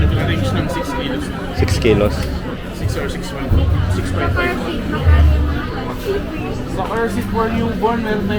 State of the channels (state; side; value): identical; both; correlation 1.00